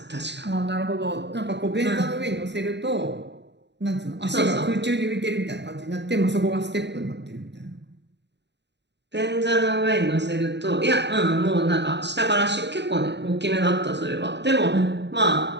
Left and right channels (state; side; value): late; left; 0.51 ms